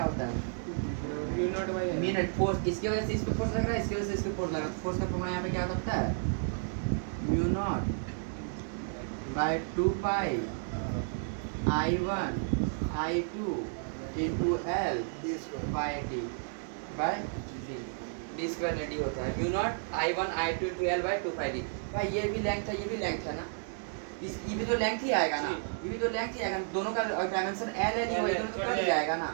होता है? मिनट फोर्स, इसकी वजह से इस पे फोर्स लग रहा है, इसकी वजह से इस पे फोर्स लग रहा है, फोर्स का फॉर्मूला यहाँ पे क्या होता है? Mu naught by 2 pi I1 I2 into L by D by D square D होता है। Mu naught I1 I2 into L by 2 pi D. भाई ये भी लेंथ है, ये भी लेंथ है ना, इस ये भी तो लेंथ ही आएगा ना, ये भी तो लेंथ ही आएगा, दोनों का डायमेंशन L ही होगा, दोनों तो कट जाएगा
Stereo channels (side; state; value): left; silent; 56 dB below the other